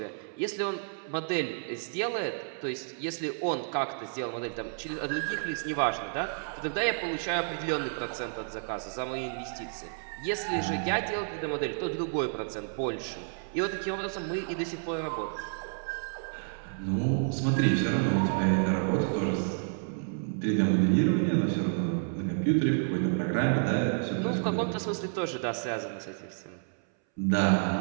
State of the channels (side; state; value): left; silent; 58 dB below the other